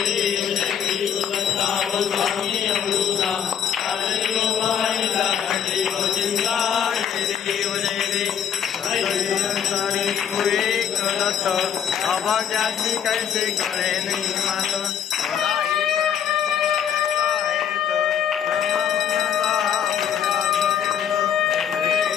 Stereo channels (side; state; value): right; quieter; 8.5 dB